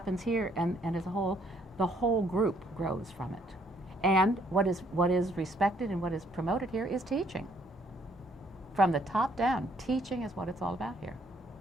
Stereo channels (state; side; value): normal; both; correlation 0.66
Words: as a whole, the whole group grows from it. And what is respected and what is promoted here is teaching. From the top down, teaching is what it's all about here.